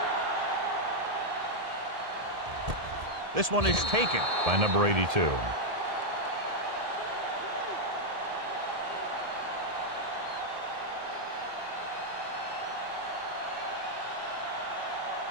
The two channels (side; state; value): left; late; 1.7 ms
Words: This one is taken by number 82.